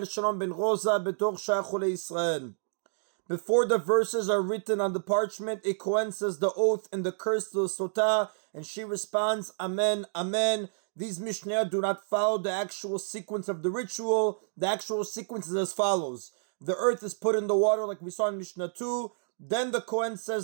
Shalom ben Rosa, Betor Shachule Israel. Before the verses are written on the parchment, a Kohen says the oath and the curse to the Sotah, and she responds, Amen, Amen. These Mishnah do not follow the actual sequence of the ritual. The actual sequence is as follows. The earth is put in the water like we saw in Mishnah 2. Then the Kohen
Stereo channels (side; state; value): left; silent; digital silence